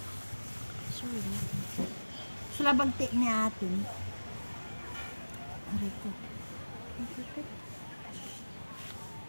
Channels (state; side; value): inverted; both; correlation -1.00